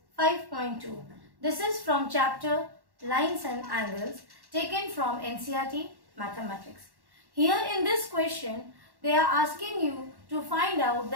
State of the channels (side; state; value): left; late; 1.1 ms